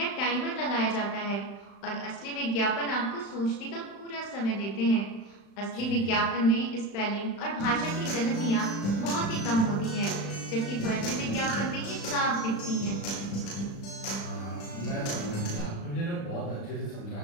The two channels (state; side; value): late; right; 35 ms